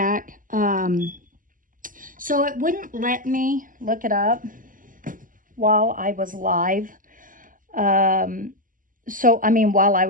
So it wouldn't let me look it up while I was live. While I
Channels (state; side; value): late; left; 0.39 ms